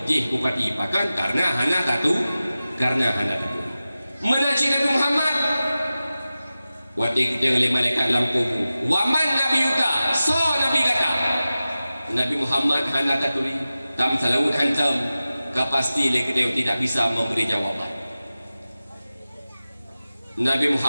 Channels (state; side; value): inverted; both; correlation -0.95